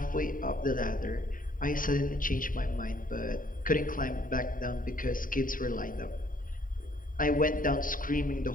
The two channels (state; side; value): late; right; 0.40 ms